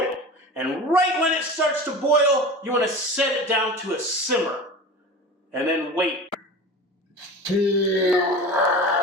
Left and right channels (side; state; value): both; normal; correlation 0.33